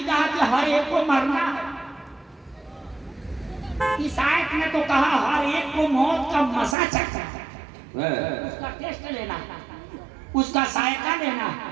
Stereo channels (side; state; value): left; drops out; at 6.8 s